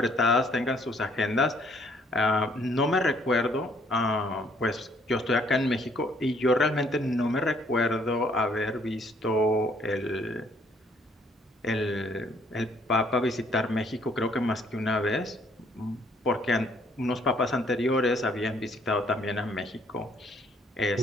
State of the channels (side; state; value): both; normal; correlation 0.64